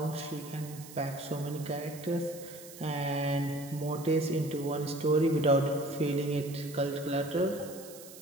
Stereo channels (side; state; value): right; noise; hiss, 16 dB below the sound